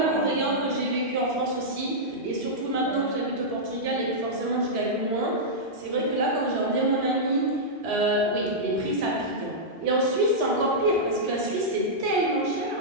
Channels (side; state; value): both; normal; correlation -0.10